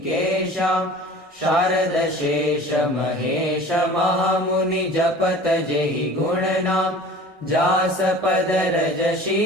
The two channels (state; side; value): normal; both; correlation 0.42